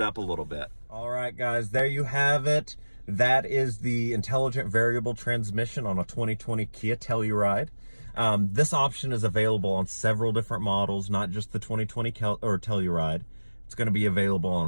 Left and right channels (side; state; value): both; inverted; correlation -1.00